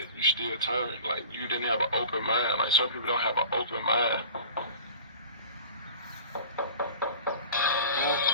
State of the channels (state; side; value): inverted; both; correlation -0.41